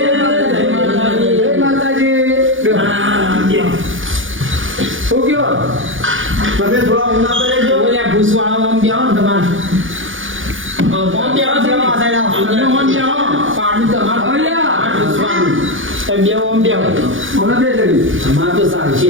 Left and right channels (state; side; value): late; left; 0.57 ms